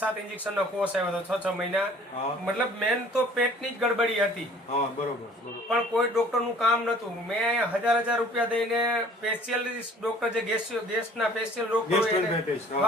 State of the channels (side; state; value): both; normal; correlation 0.52